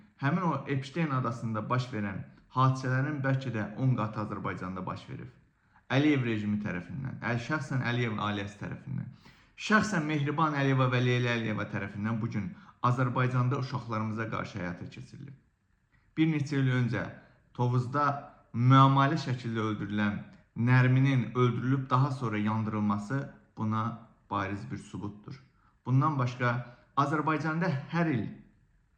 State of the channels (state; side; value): identical; both; correlation 1.00